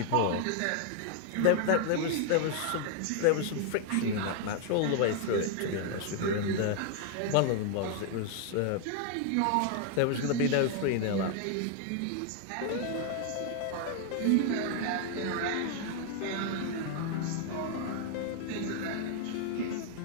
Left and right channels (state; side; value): different; both; correlation 0.00